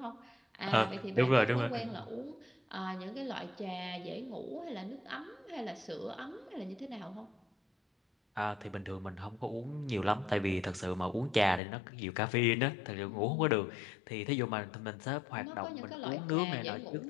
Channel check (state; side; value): drops out; right; at 11.6 s